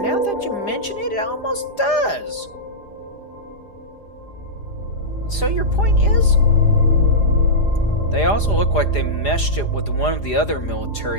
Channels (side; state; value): right; late; 4.9 ms